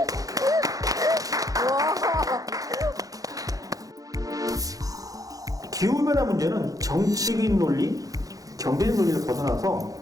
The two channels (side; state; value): left; late; 0.17 ms